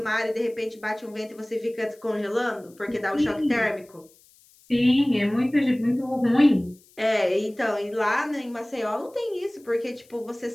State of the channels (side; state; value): left; noise; hiss, 29 dB below the sound